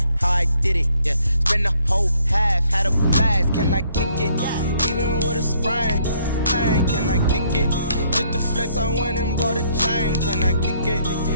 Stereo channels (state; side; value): inverted; both; correlation -0.67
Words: how I did it. Yeah. Spend the whole half, had a blast. Can I kick it? Even with a sprain. Pain, can I kick it? Just the flex, I went and bought a chain. Can I kick it?